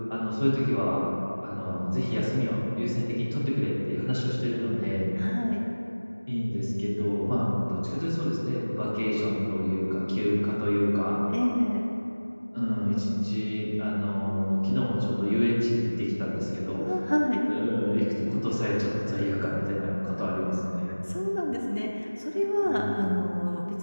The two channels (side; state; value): both; inverted; correlation -1.00